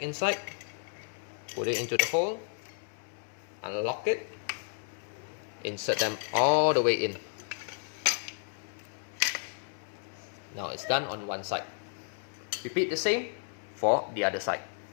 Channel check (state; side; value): silent; right; 56 dB below the other